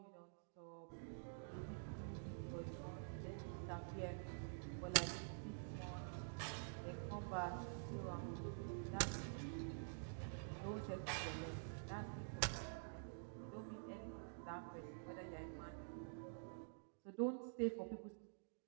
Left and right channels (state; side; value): silent; left; digital silence